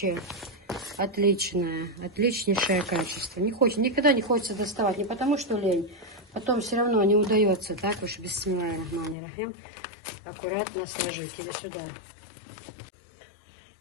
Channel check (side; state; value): right; drops out; at 9.2 s